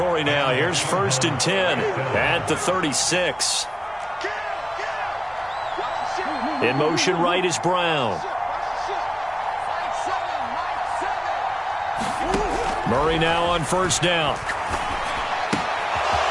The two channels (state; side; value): identical; both; correlation 1.00